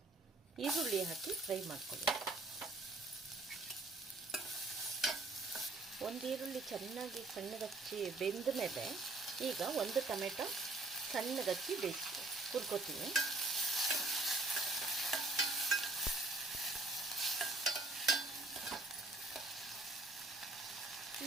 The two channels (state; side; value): quieter; left; 3.1 dB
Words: ಈರುಳ್ಳಿ ಹಾಕಿ ಫ್ರೈ ಮಾಡ್ಕೊಳ್ಳಿ. ಒಂದು ಈರುಳ್ಳಿ ಚೆನ್ನಾಗಿ ಸಣ್ಣಗಚ್ಚಿ ಬೆಂದ ಮೇಲೆ ಈಗ 1 ಟೊಮೆಟೊ ಸಣ್ಣಗಚ್ಚಿ ಹುರ್ಕೋತೀನಿ.